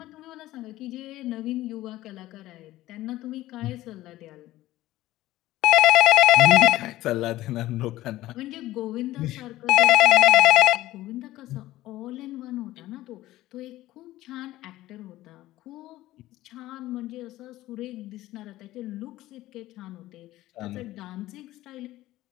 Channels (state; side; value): quieter; right; 16.1 dB